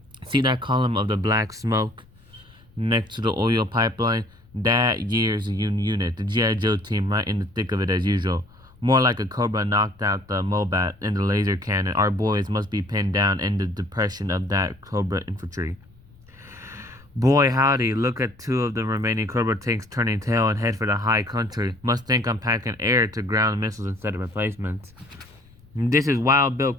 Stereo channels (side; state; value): left; noise; rumble, 27 dB below the sound